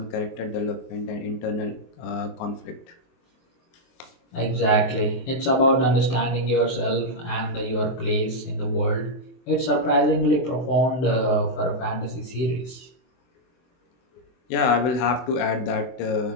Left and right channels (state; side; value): late; right; 24 ms